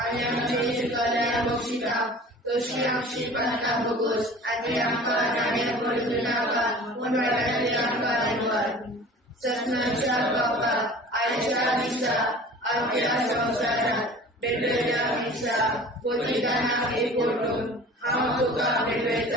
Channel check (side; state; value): both; normal; correlation 0.43